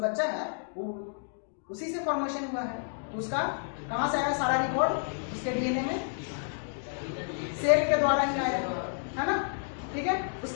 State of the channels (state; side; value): silent; right; digital silence